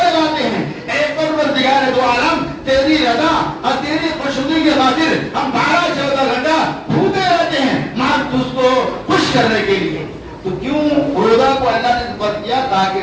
ہیں. اے پروردگار دو عالم، تیری رضا اور تیری خوشنودی کی خاطر ہم 12-14 گھنٹہ بھوکے رہتے ہیں ماں تجھ کو خوش کرنے کے لیے. تو کیوں روزہ کو اللہ نے فرض کیا؟ تاکہ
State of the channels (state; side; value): identical; both; correlation 1.00